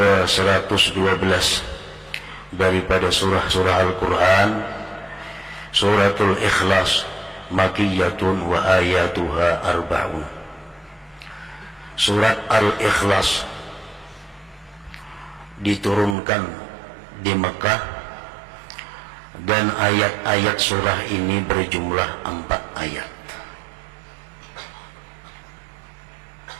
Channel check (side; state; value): left; drops out; at 16.2 s